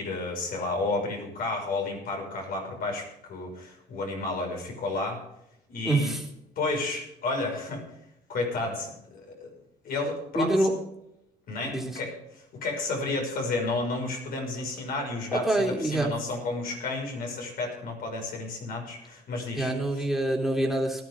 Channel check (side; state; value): both; normal; correlation 0.53